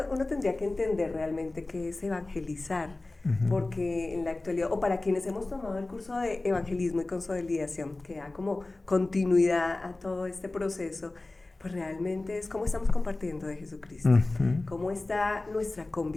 uno tendría que entender realmente qué es evangelizar, Ujú. porque en la actualidad, o para quienes hemos tomado el curso de evangelismo y consolidación, que da como continuidad a todo este proceso, pues realmente es cómo estamos compartiendo de Jesucristo, Ujú. cómo está nuestra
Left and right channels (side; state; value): right; quieter; 3.0 dB